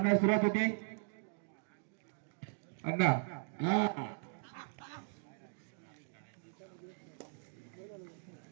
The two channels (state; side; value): silent; left; digital silence